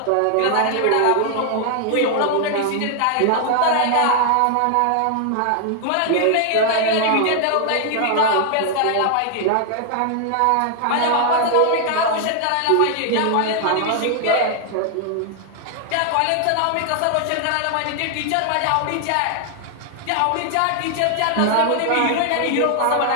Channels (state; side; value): different; both; correlation 0.00